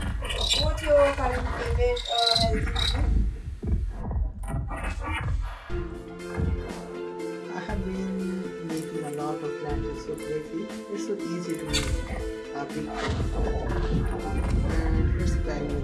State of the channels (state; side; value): identical; both; correlation 1.00